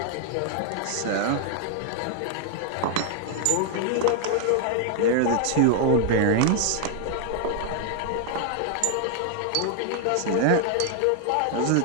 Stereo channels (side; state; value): both; different; correlation 0.00